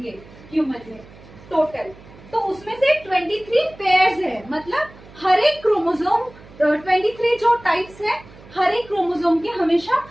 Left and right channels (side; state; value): right; noise; hum, 22 dB below the sound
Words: ह्यूमन में टोटल। तो उसमें से 23 पेयर्स है, मतलब हर एक क्रोमोसोम 23 जो टाइप्स है, हर एक क्रोमोसोम के हमेशा